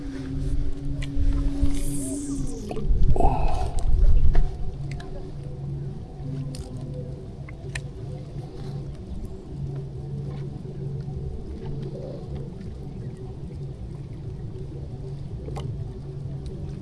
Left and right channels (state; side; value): identical; both; correlation 1.00